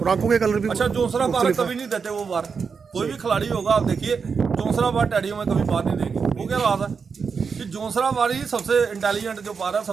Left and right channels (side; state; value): left; quieter; 5.7 dB